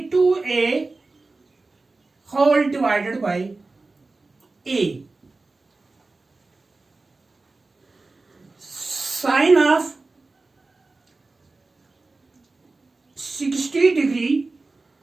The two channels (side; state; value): left; quieter; 3.5 dB